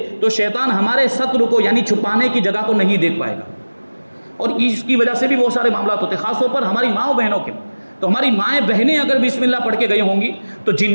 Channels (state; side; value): inverted; both; correlation -1.00